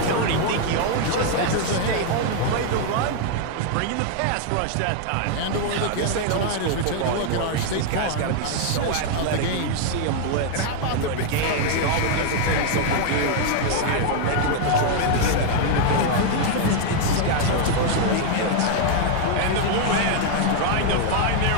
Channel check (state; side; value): different; both; correlation 0.00